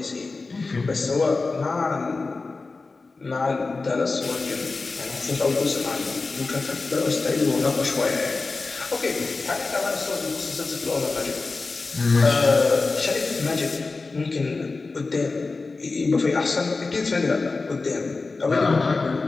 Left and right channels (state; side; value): quieter; right; 3.8 dB